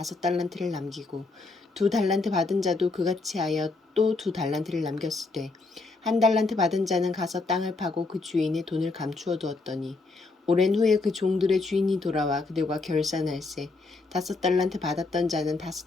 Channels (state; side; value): quieter; right; 3.7 dB